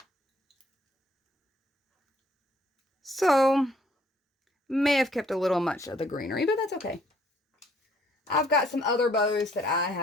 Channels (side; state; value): both; normal; correlation 0.63